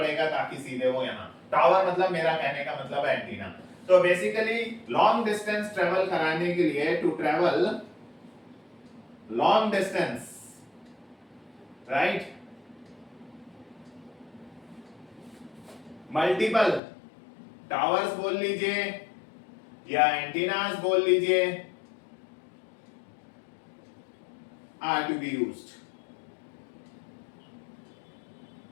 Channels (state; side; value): drops out; right; at 16.8 s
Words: ताकि सीधे वो यहाँ, टावर मतलब मेरा कहने का मतलब एंटीना। तो बेसिकली लॉन्ग डिस्टेंस ट्रेवल कराने के लिए, to travel long distance, right, multiple towers बोल लीजिए या एंटीनास बोल लीजिए, are to be used